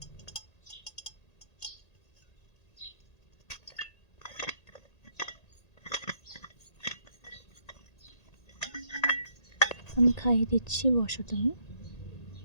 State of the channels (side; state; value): right; late; 1.8 ms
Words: আমি খাইয়ে দিচ্ছি, বসো তুমি।